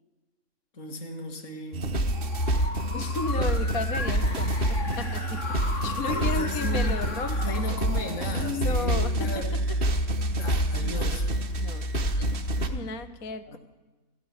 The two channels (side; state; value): right; late; 3.2 ms